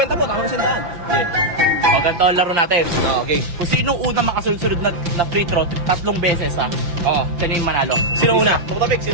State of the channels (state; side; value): late; left; 5.9 ms